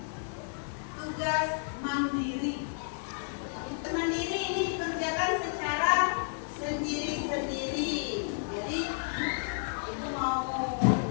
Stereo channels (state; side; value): silent; right; 57 dB below the other